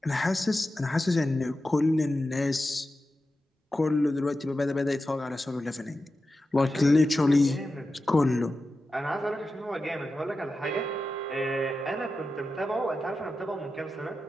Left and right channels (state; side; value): normal; both; correlation 0.92